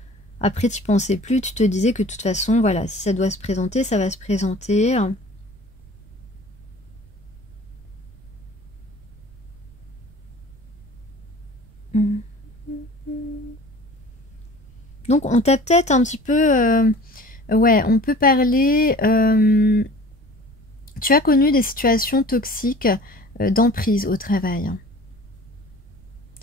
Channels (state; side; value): noise; right; rumble, 24 dB below the sound